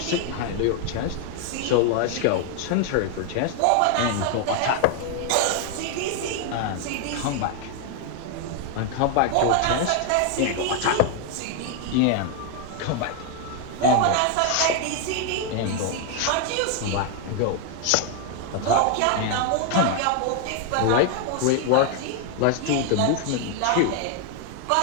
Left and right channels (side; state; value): both; different; correlation 0.01